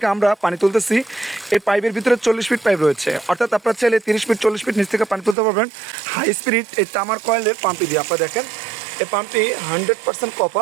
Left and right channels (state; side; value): drops out; left; at 5.4 s